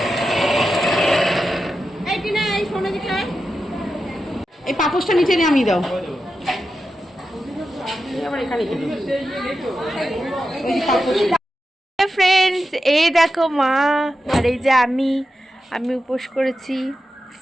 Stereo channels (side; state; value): both; normal; correlation 0.90